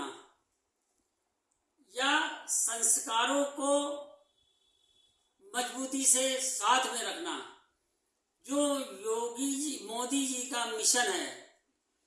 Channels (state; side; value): identical; both; correlation 1.00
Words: या संस्कारों को मजबूती से साथ में रखना, जो मोदी जी का मिशन है,